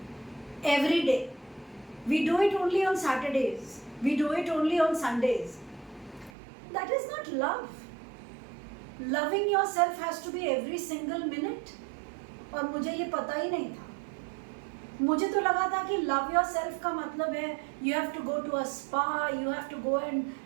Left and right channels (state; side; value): drops out; left; at 6.3 s